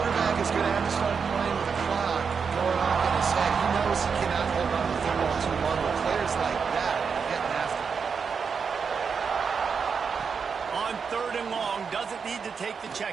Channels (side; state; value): left; quieter; 5.9 dB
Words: is going to have to start playing with the clock going off in his head. He knows he cannot hold on to the football too long with players like that getting after him. On third and long, doesn't need to take the check